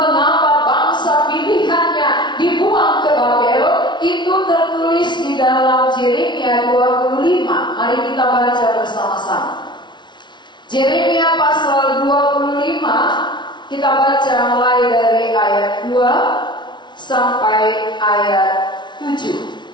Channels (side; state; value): right; late; 0.22 ms